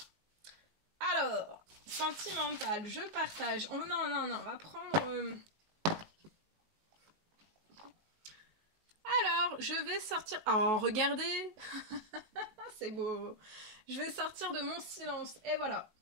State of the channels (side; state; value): left; late; 19 ms